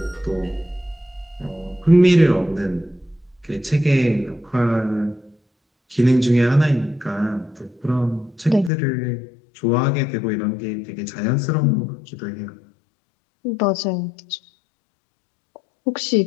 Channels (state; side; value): drops out; right; at 8.7 s